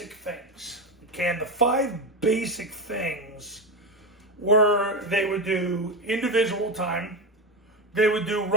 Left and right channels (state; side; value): normal; both; correlation 0.13